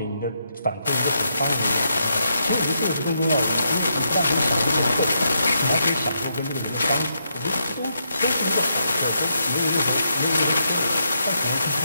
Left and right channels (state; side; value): inverted; both; correlation -0.81